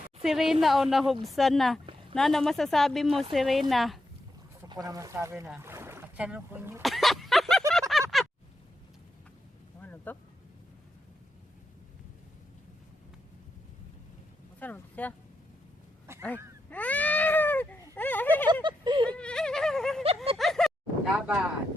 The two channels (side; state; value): both; normal; correlation 0.85